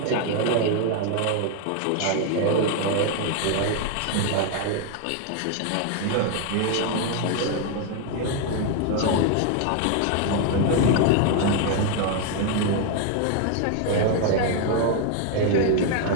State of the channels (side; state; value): both; different; correlation 0.01